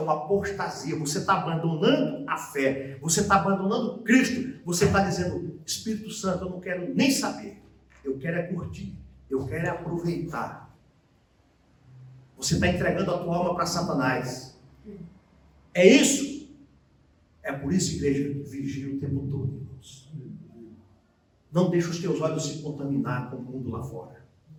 uma apostasia. Você está abandonando a fé, você está abandonando Cristo, você está dizendo: Espírito Santo, eu não quero nem saber, eu quero é curtir, eu quero é aproveitar. Você está entregando a tua alma para Satanás. É isso. É por isso, igreja, vigia o tempo todo, irmãos. Não deixe os teus olhos se contaminar com o mundo lá fora.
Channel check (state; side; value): identical; both; correlation 1.00